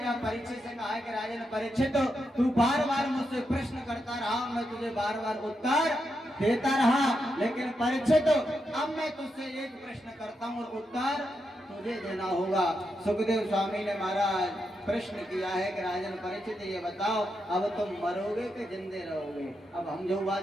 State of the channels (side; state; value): both; normal; correlation 0.84